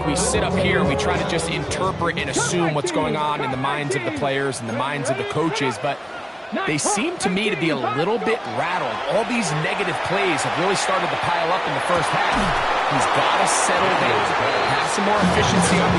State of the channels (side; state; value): both; identical; correlation 1.00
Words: We sit up here, we try to just interpret and assume what's going on in the minds of the players and the minds of the coaches, but they seem to me to be a little bit rattled. All these negative plays have really started to pile up in the first half. He's got to settle down, have some more efficiency on